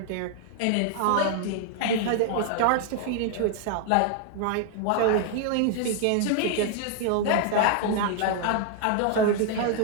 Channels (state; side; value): different; both; correlation 0.00